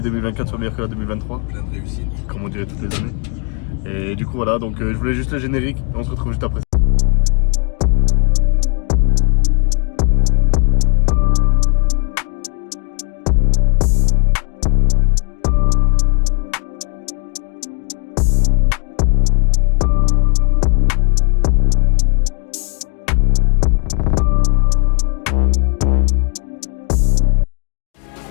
2024 soit meilleure que la 2023. Plein de réussite. Comme on dirait toutes les années. Et du coup voilà, donc je voulais juste le générique et on se retrouve juste après.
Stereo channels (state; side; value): quieter; right; 35.5 dB